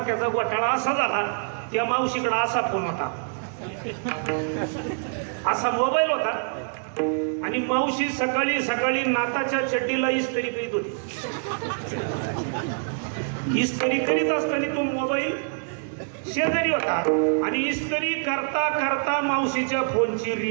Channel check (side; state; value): left; silent; digital silence